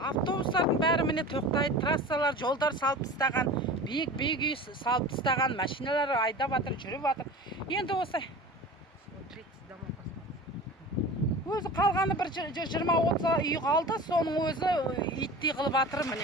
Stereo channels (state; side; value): normal; both; correlation 0.35